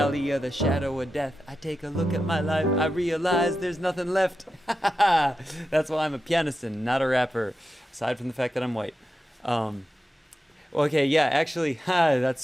of the shadow of death, I take a look at my life, I realize there's nothing left. That's why I'm a pianist and not a rapper, aside from the fact that I'm white. Okay, yeah, actually, that's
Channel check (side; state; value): both; normal; correlation 0.90